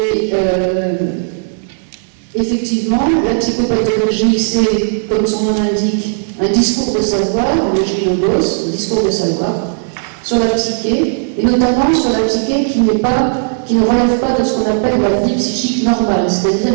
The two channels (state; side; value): silent; left; digital silence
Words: effectivement, la psychopathologie, c'est, comme son nom l'indique, un discours de savoir, le logos, un discours de savoir, sur la psyché, et notamment sur la psyché qui ne relève pas de ce qu'on appelle la vie psychique normale, c'est-à-dire